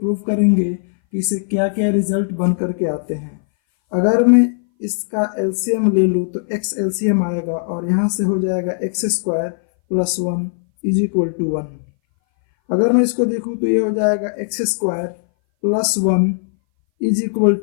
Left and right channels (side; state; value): right; silent; 61 dB below the other